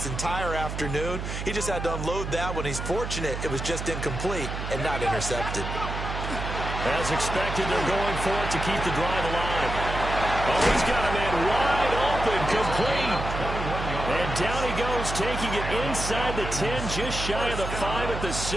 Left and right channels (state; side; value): noise; right; hum, 5 dB below the sound